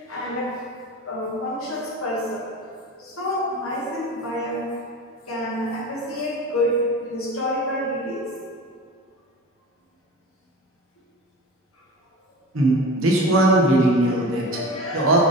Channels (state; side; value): normal; both; correlation 0.33